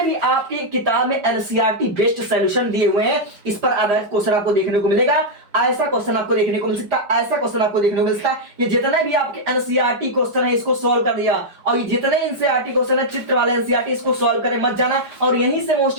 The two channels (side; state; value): left; late; 5.1 ms